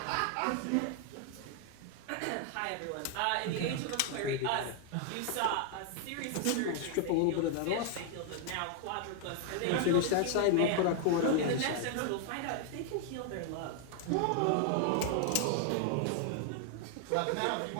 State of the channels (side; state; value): both; different; correlation 0.00